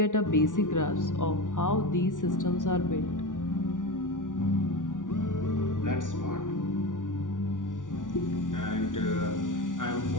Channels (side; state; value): right; late; 0.87 ms